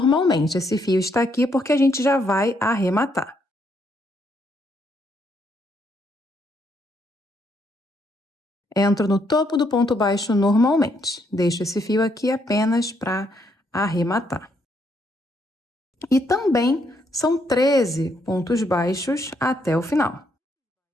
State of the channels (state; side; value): normal; both; correlation 0.74